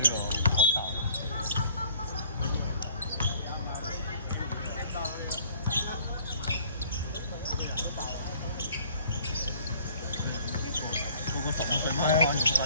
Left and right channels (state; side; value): inverted; both; correlation -0.55